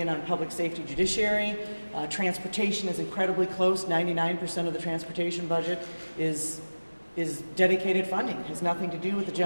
on public safety judiciary. Transportation is incredibly close. 99% of the transportation budget is dedicated funding. It has nothing to do with the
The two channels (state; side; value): inverted; both; correlation -1.00